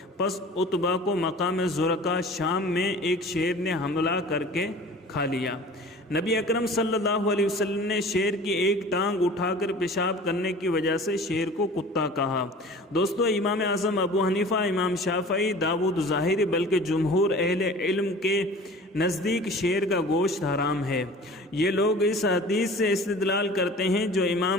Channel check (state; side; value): normal; both; correlation 0.43